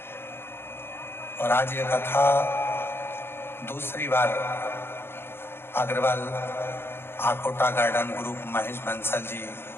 और आज ये कथा दूसरी बार अग्रवाल आकोटा गार्डन ग्रुप महेश बंसल जी,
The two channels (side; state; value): right; late; 0.11 ms